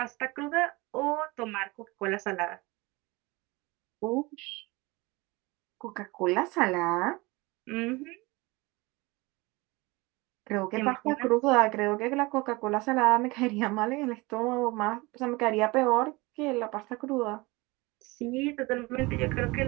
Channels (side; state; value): left; quieter; 23.6 dB